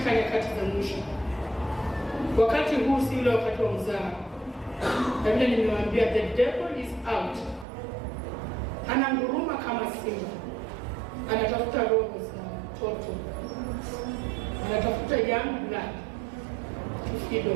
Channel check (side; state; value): left; drops out; at 7.7 s